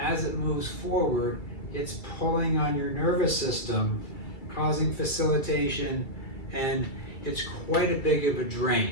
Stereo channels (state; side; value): late; right; 2.1 ms